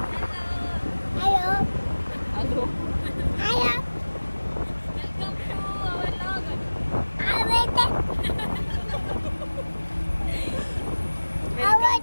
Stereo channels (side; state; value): both; inverted; correlation -1.00